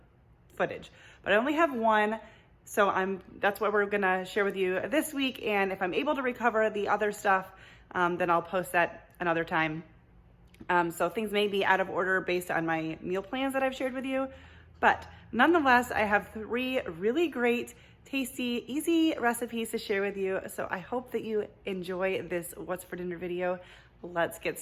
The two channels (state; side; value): identical; both; correlation 1.00